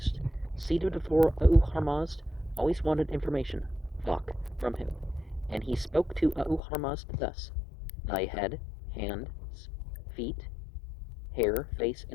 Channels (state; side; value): drops out; right; at 6.6 s